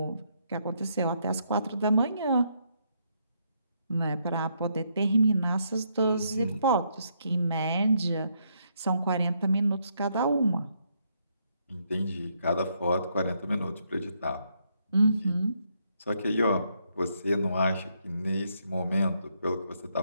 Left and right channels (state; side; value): inverted; both; correlation -0.75